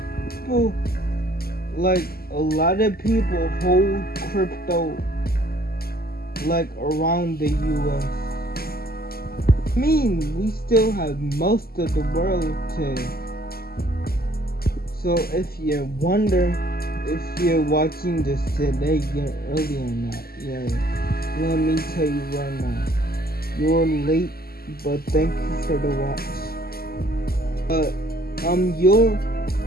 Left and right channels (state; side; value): late; right; 0.45 ms